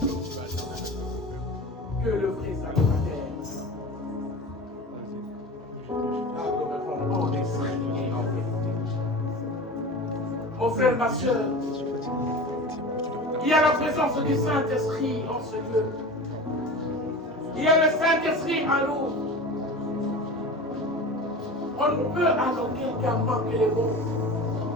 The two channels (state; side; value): normal; both; correlation 0.33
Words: Que le vrai salutateur. Adorons en esprit et en vérité. Mon frère, ma soeur, il y a la présence du Saint-Esprit en ce lieu. Il y a le Saint-Esprit en nous. On ne peut à aucun cas manquer les mots